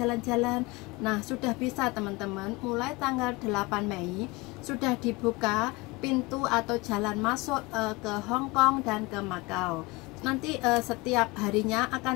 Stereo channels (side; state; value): right; quieter; 23.6 dB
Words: Nah sudah bisa teman-teman, mulai tanggal 8 Mei sudah dibuka pintu atau jalan masuk ke Hongkong dan ke Makau. Nanti setiap harinya